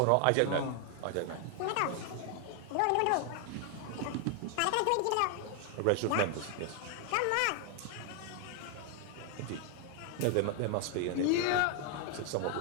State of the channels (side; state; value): both; different; correlation 0.00